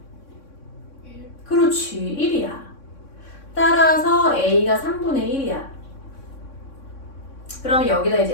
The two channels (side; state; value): right; late; 3.6 ms